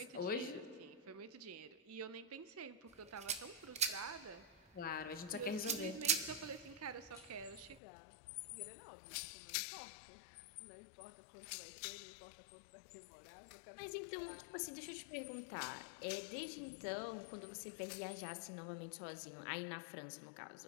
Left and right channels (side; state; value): right; drops out; at 7.8 s